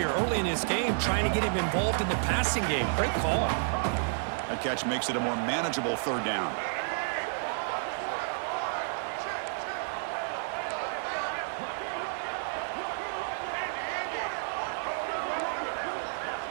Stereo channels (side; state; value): left; silent; digital silence